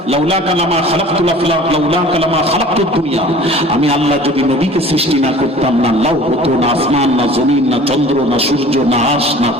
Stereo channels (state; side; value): normal; both; correlation 0.45